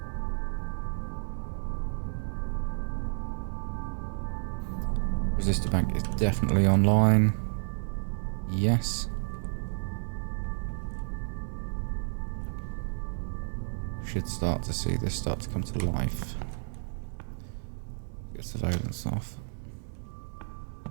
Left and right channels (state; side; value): silent; left; digital silence